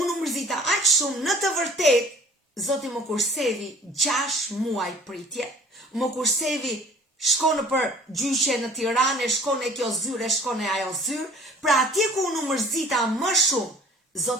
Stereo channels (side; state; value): both; normal; correlation 0.49